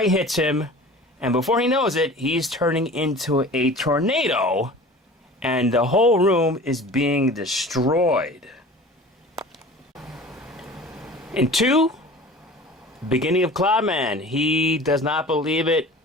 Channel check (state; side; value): normal; both; correlation 0.41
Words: hits him. And before he knows it, he's turning into a tornado. And the whole room is being destroyed. In 2, beginning of Cloudman. He does not believe it.